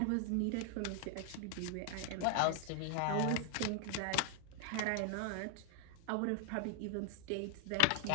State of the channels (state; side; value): different; both; correlation 0.00